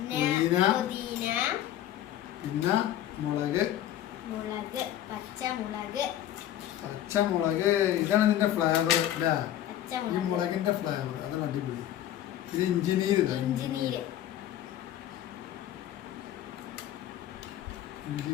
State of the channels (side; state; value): right; quieter; 12.0 dB